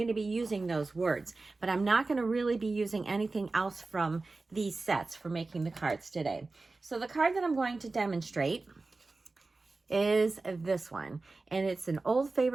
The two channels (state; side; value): quieter; left; 3.5 dB